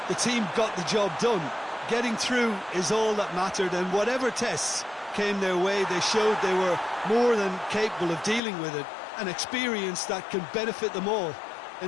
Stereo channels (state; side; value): drops out; right; at 8.4 s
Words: the team got the job done. Getting through is all that mattered, and whatever tests came their way, they showed they were more than capable of dealing with it, an experience that can benefit them all